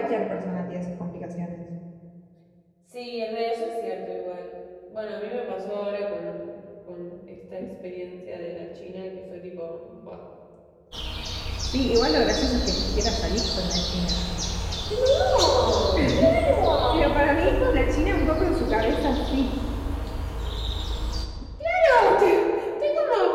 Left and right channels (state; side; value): identical; both; correlation 1.00